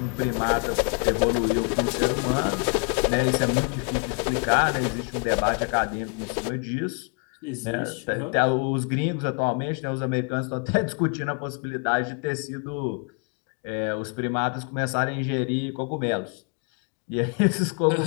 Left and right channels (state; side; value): quieter; right; 37.8 dB